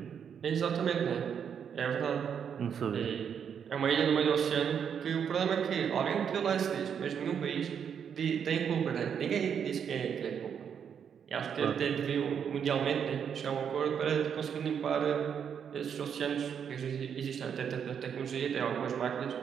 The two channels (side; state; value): left; quieter; 7.7 dB